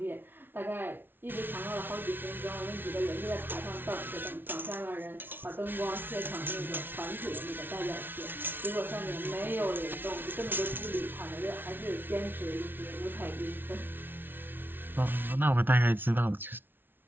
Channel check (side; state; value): left; late; 0.10 ms